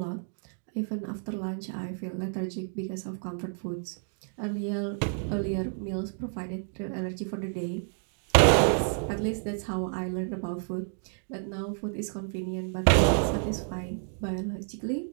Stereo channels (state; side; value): silent; left; 58 dB below the other